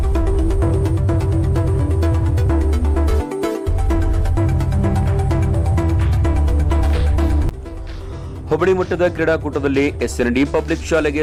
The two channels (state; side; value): identical; both; correlation 1.00